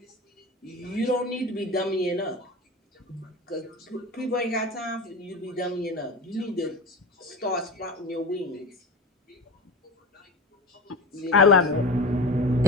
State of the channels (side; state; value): both; normal; correlation 0.30